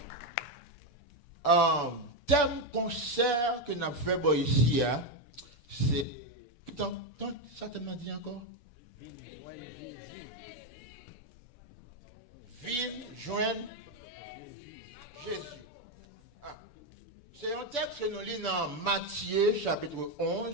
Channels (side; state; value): right; late; 6.9 ms